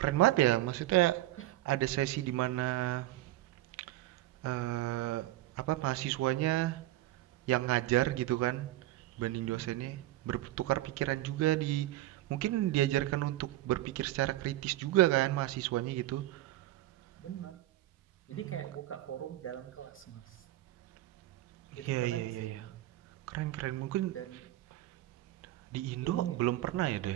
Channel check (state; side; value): quieter; left; 15.7 dB